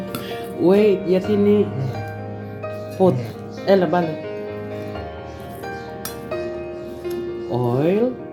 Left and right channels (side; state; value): both; identical; correlation 1.00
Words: Wait, yatin ni put. Bale. Oil.